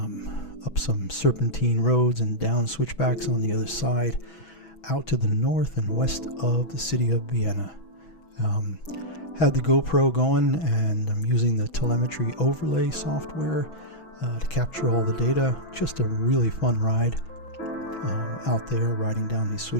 some serpentine roads and down switchbacks on the other side, out to the north and west of the city of Vienna. Had the GoPro going, and I'm using the telemetry overlay software to capture all the data. Just a really fun ride out there riding down these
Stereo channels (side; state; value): right; late; 6.1 ms